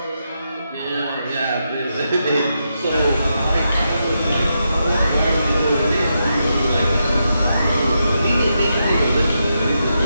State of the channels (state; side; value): inverted; both; correlation -0.84